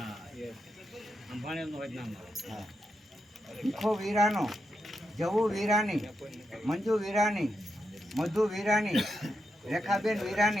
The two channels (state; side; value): normal; both; correlation 0.85